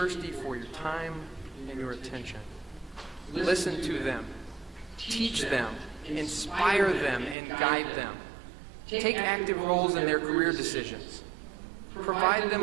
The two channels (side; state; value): left; drops out; at 7.4 s